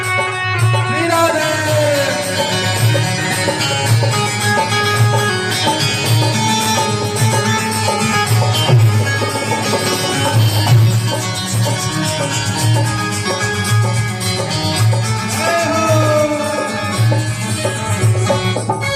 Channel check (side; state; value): both; identical; correlation 1.00